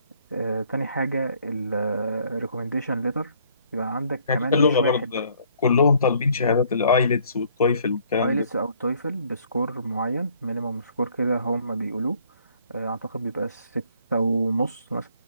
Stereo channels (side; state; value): both; inverted; correlation -0.62